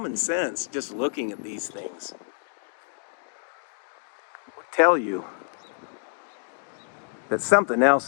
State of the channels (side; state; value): right; silent; digital silence